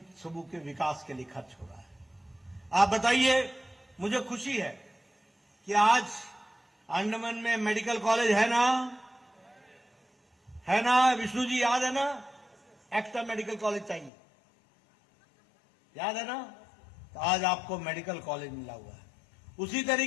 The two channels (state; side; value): drops out; right; at 14.1 s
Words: समूह के विकास के लिए खर्च हो रहा है। आप बताइए, मुझे खुशी है कि आज अंडमान में मेडिकल कॉलेज है ना विष्णु जी, याद है ना? एक्स्ट्रा मेडिकल कॉलेज चाहिए, याद है ना? तो आज आपको मेडिकल कॉलेज मिला हुआ है। उसी